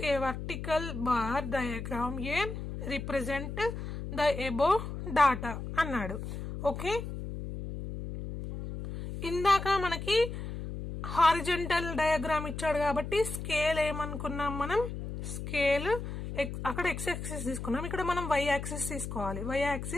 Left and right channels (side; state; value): left; noise; hum, 7 dB below the sound